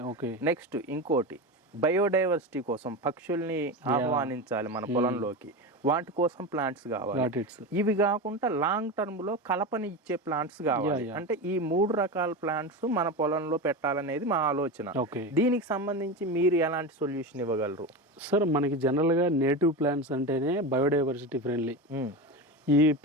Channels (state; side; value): normal; both; correlation 0.21